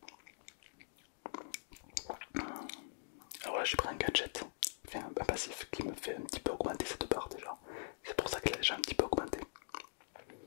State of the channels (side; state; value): right; silent; digital silence